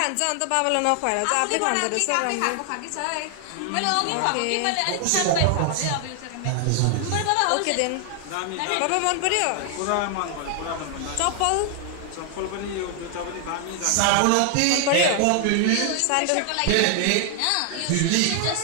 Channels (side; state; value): both; different; correlation 0.00